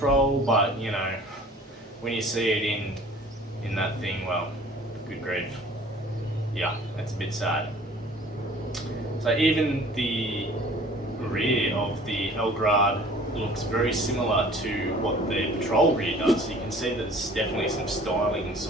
but, when you see it in that thing, well, good grief. Yeah, that's a bit sad. So even the rear of the El Grad looks very similar to what the Patrol rear does. You can see there's definitely some styling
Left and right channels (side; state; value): both; normal; correlation 0.49